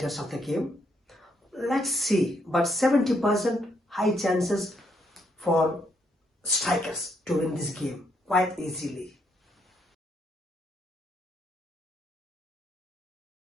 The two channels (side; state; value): both; normal; correlation 0.74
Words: of the game. Let's see, but 70% high chances for Strikers to win this game quite easily.